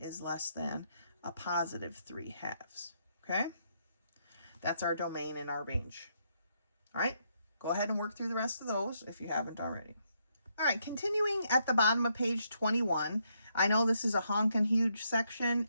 is less than a positive 3/2. Okay? That's our domain and our range. All right, go ahead and work through the rest of those if you haven't already. All right, continuing at the bottom of page 21, I know this is a honkin' huge section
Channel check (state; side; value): inverted; both; correlation -0.76